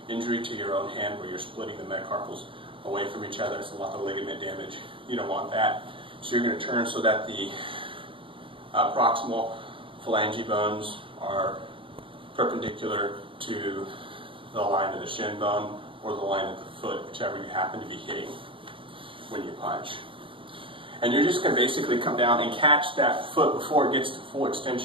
injury to your own hand where you're splitting the metacarpals away from each other. It's a lot of ligament damage. You don't want that. So you're going to turn so that the proximal phalange bones are perpendicular to the line of the shin bone or the line of the foot, whichever you happen to be hitting when you punch. And you're just going to basically come down and catch that foot before it gets to full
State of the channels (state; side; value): late; left; 0.25 ms